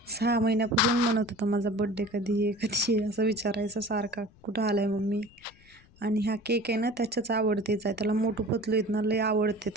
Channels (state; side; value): noise; left; rumble, 27 dB below the sound